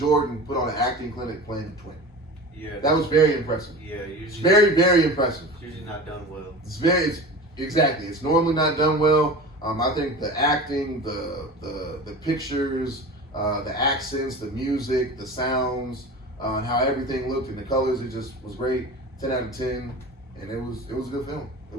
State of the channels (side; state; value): both; normal; correlation 0.34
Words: put on an acting clinic playing the twin. Yeah. That was very impressive. Yeah, It's usually. very impressive. It's usually not done well. Exactly. It's normally not done well. I think the acting, the pictures, the accents, the music, the sounds, and how everything looked and the colors, it just was great. 10 out of 10, and it was a good film. It